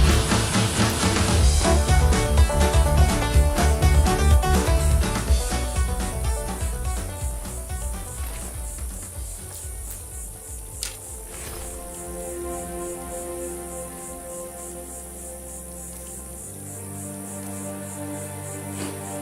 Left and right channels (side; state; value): both; identical; correlation 1.00